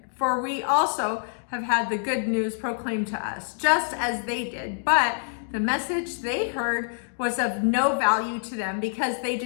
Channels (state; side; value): silent; right; digital silence